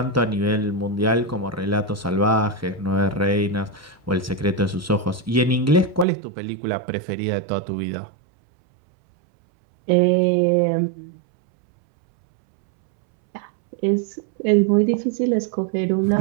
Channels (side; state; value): left; drops out; at 6.1 s